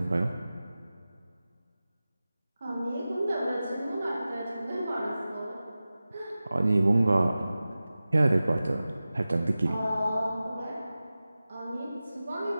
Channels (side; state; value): both; inverted; correlation -0.96